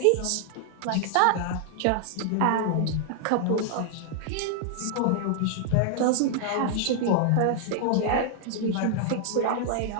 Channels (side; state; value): both; different; correlation 0.00